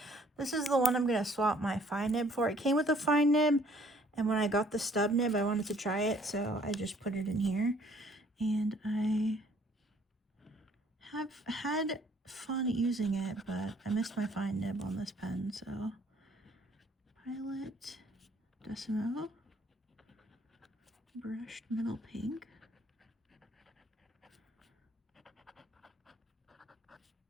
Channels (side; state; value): both; normal; correlation 0.60